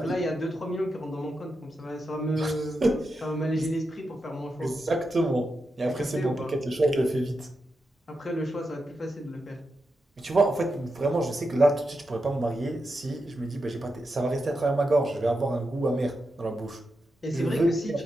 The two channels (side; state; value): both; normal; correlation 0.87